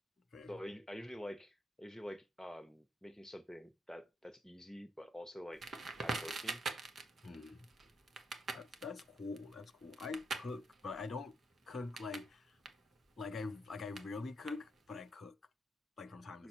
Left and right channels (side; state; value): both; normal; correlation 0.78